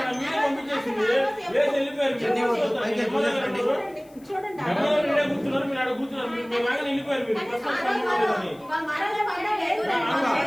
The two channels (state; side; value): noise; left; hiss, 29 dB below the sound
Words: మీరే పంపించేసింది లేదు వెళ్ళిపోయారు కూర్చున్నారు మీరు ఆడ కూర్చున్నారు మీరు లాగానే వెళ్ళిపోయారు